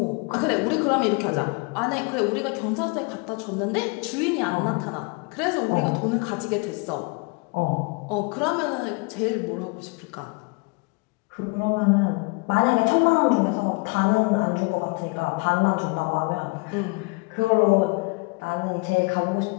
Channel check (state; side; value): quieter; right; 30.3 dB